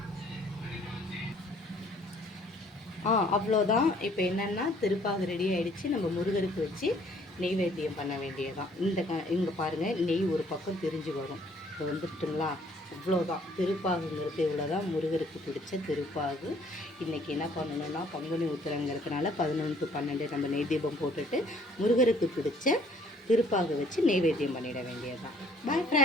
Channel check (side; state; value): both; normal; correlation 0.61